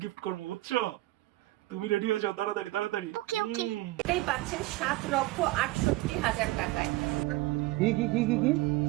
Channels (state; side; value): quieter; left; 18.8 dB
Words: গিফট করবো, বুঝছো? তুমি রেডি হয়ে যাও তাড়াতাড়ি তাড়াতাড়ি। ওকে ওকে। এটাই পাচ্ছেন ৭,৬৮,০০০ টাকায়। কি